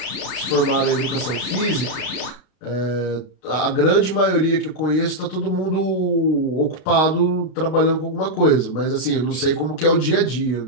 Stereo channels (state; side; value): late; right; 32 ms